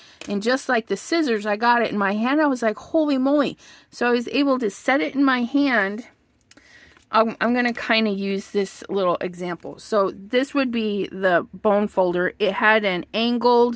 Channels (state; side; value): identical; both; correlation 1.00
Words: And just like the scissors, I got it in my hand. I was like, holy moly. So I was able to set it in my hand. I'm going to kind of use this little example. So this would be the bone folder. It had an